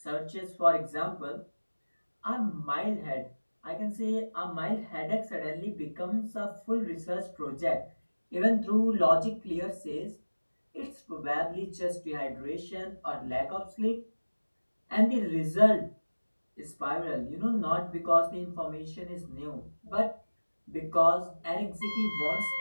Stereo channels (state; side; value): inverted; both; correlation -1.00